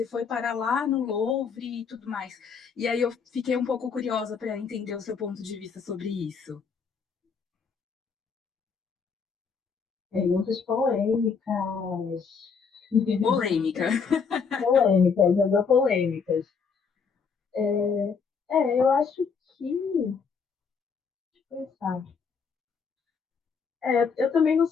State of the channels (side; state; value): right; quieter; 5.8 dB